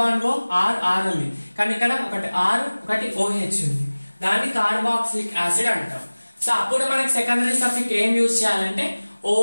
O R R ఉంది, కానీ ఇక్కడ ఒకటి ఆర్ ఒకటి ఓహెచ్ ఉంది. దాన్ని కార్బాక్సిలిక్ యాసిడ్ అంటాం. సో అప్పుడు మనకి సెకండరీ సఫిక్స్ ఏం యూజ్ చేయాలంటే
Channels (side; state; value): both; inverted; correlation -1.00